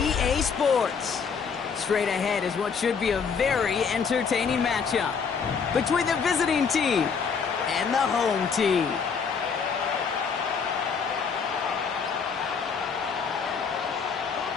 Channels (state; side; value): quieter; right; 6.0 dB